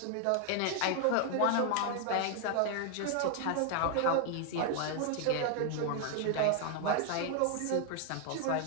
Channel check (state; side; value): different; both; correlation 0.01